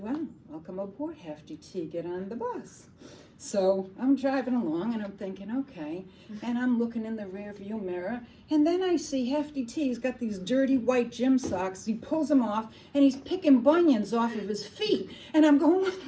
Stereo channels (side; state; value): both; identical; correlation 1.00